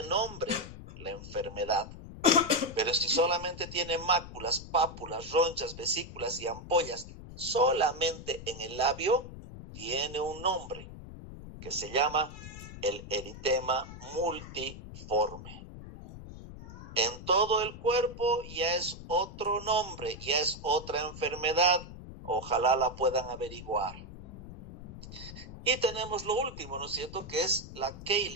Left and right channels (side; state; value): left; noise; rumble, 13 dB below the sound